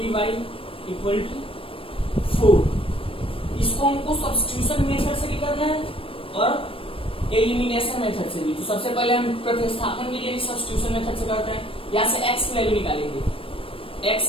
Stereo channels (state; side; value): late; right; 0.26 ms